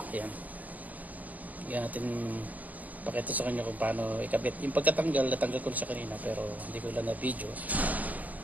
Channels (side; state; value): left; late; 0.078 ms